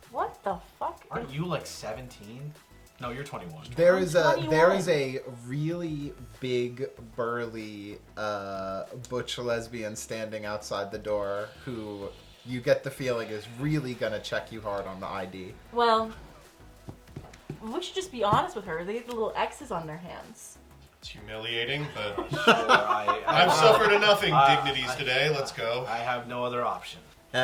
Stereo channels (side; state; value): both; identical; correlation 1.00